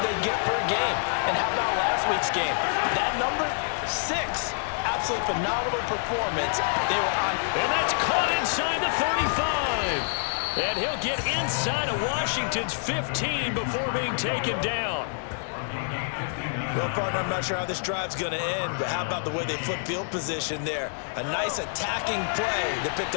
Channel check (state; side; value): silent; right; digital silence